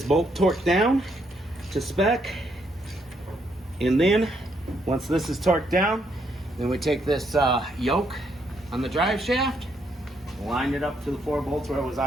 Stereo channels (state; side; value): normal; both; correlation 0.74